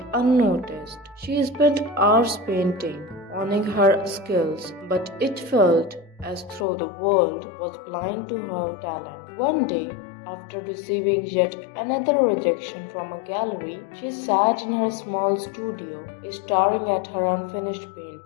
unnoticed. She spent hours painting, honing her skills, but it felt as though the world was blind to her talent. One day, after receiving yet another rejection from a gallery, she sat in her small studio, staring at her unfinished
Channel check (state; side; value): drops out; right; at 6.7 s